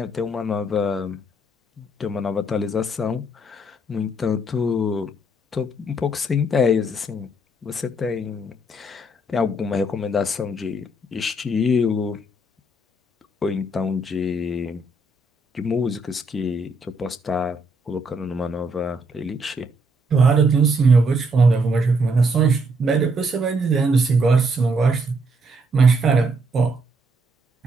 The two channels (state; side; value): normal; both; correlation 0.73